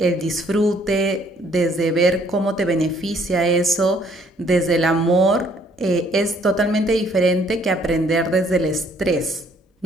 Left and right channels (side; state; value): both; normal; correlation 0.63